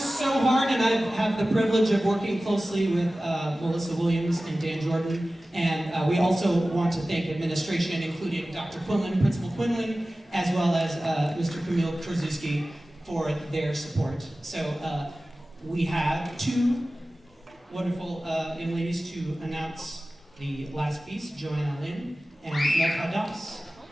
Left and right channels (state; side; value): normal; both; correlation 0.96